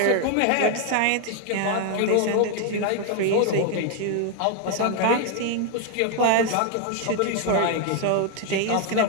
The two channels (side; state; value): both; different; correlation 0.01